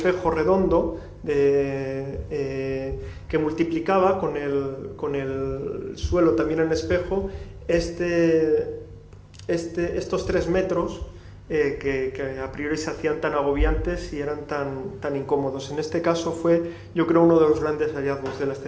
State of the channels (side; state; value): both; identical; correlation 1.00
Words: redondo que multiplicaba con el suelo también en espejo estos 3 metros que a priori se hacían tan agobiantes y eran tan incómodos. En este caso fue, yo creo, uno de los grandes hallazgos de la